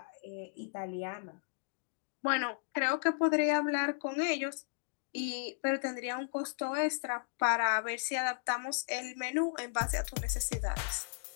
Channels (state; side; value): silent; right; digital silence